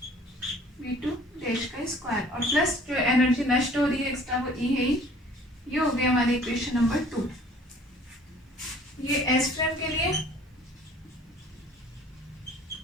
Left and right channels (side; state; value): both; normal; correlation 0.52